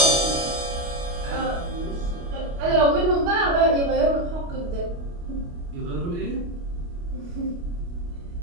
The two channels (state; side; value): late; left; 29 ms